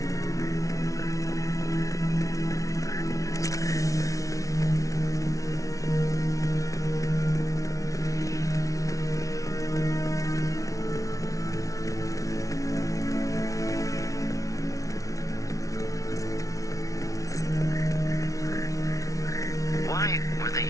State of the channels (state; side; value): late; right; 0.17 ms